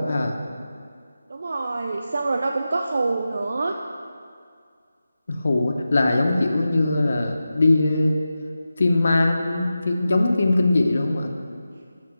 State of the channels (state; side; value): inverted; both; correlation -0.93